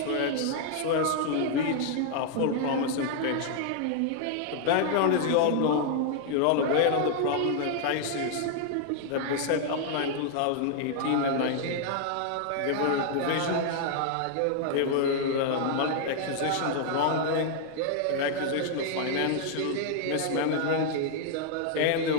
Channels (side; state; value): both; different; correlation 0.00